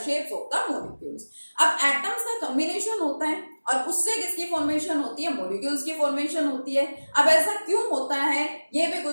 shapes of the molecules. अब एटम्स का कॉम्बिनेशन होता है और उससे किसकी फॉर्मेशन होती है, मॉलिक्यूल्स की फॉर्मेशन होती है। अब ऐसा क्यों होता है ये भी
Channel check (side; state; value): both; inverted; correlation -1.00